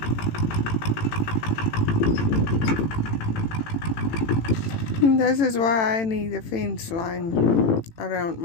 This is why I need a fence line around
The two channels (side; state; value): right; late; 18 ms